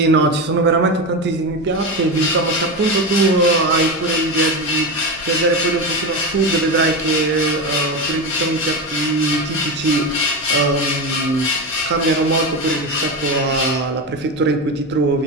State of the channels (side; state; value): left; noise; rumble, 24 dB below the sound